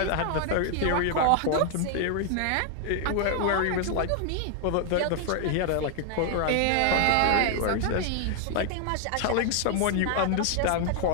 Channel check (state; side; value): different; both; correlation 0.00